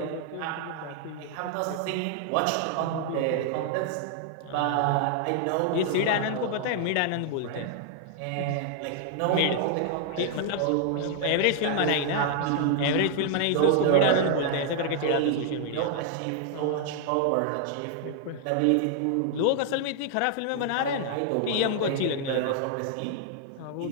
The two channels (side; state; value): both; different; correlation 0.00